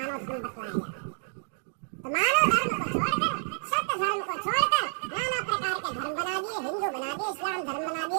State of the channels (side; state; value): left; silent; 58 dB below the other